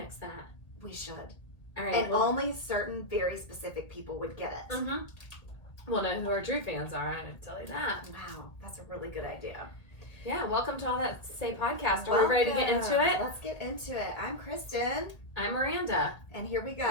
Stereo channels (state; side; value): late; right; 1.6 ms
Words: that. We should. All right. And only certain very specific people would get it. Mm-hmm. We'll know who our true fans are. I can tell you that. Wow, that's a really good idea. Yeah, welcome to All That to Say podcast. Are we ready to get into it? Let's get into it. I'm Kristen. I'm Miranda. And here we